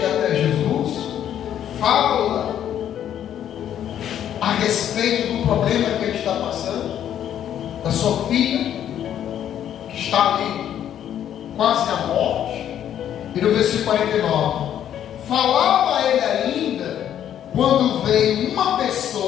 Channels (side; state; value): right; quieter; 10.3 dB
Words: até Jesus, fala a respeito do problema que ele está passando, da sua filha, que está ali quase à morte. E no versículo 49, falava ele ainda, quando veio uma